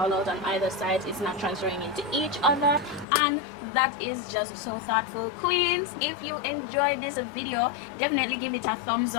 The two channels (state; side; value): drops out; right; at 3.1 s